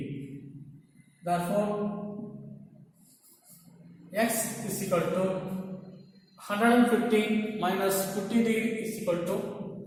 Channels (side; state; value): both; identical; correlation 1.00